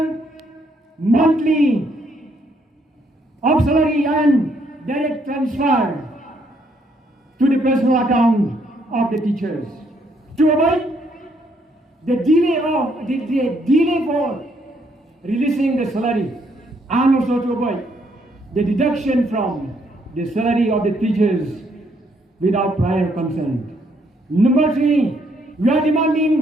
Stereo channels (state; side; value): normal; both; correlation 0.71